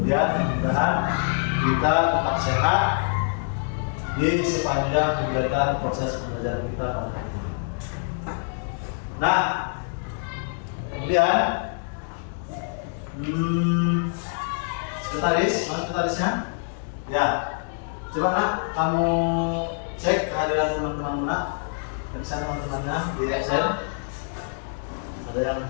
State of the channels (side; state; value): right; silent; digital silence